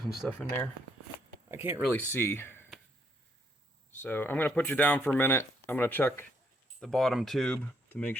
and stuff in there. I can't really see. So I'm going to put you down for a minute. I'm going to check the bottom tube to make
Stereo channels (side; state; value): both; normal; correlation 0.71